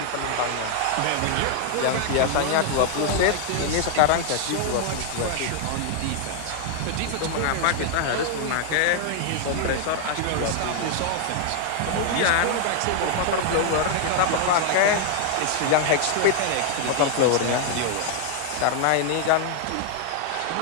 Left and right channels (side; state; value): both; different; correlation 0.00